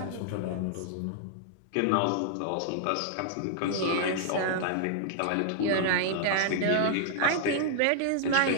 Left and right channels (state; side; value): different; both; correlation -0.01